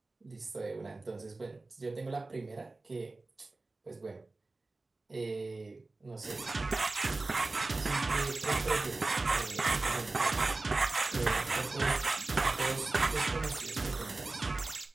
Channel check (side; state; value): left; quieter; 3.3 dB